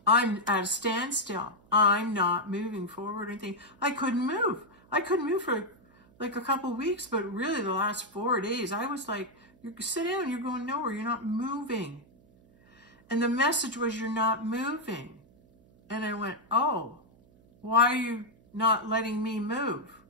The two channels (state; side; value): noise; right; hum, 29 dB below the sound